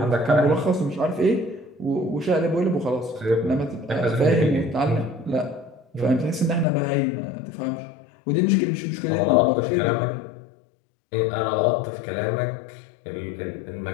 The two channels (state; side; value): drops out; right; at 6.7 s